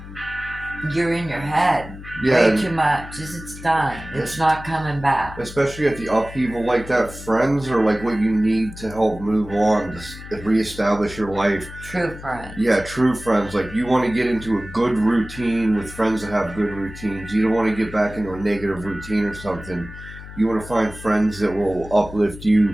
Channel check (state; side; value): noise; left; hum, 14 dB below the sound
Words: you're in your head Yeah, way and too much. It's done. It's not coming back. especially at the upheaval like that, friends are like what you need to help move on, to reestablish your life. True friends. Yeah, true friends. Like you want to get into a good routine with friends that have good routines. You don't want to get back into a negative routine or something. You want to find friends that will uplift